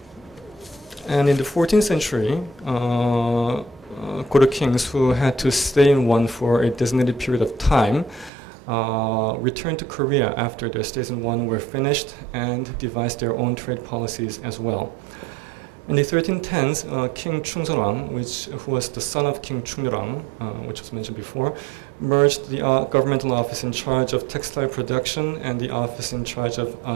And in the 14th century, Goryeo kings who had to stay in One for a designated period of time returned to Korea after their stays in One were finished and devised their own trade policies as well. In the 1310s, King Chungseolwang, who was the son of King Chungnyeorang, which was mentioned before, merged the governmental office in charge of textile production and the office in charge of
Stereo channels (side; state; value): left; drops out; at 8.3 s